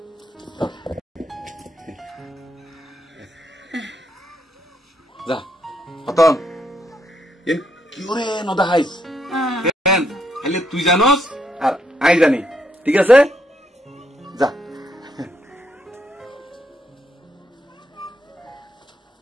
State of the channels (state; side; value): normal; both; correlation 0.75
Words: Ya. Oton. Yen কি করে নদা হাইস কেন খালি তুই জানোস আর I জানি ঠিক আছে যা